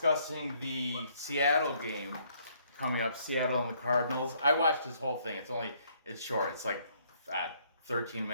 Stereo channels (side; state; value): both; inverted; correlation -0.66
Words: the Seattle game coming up, Seattle and the Cardinals. I watched his whole thing. It's short. It's like 13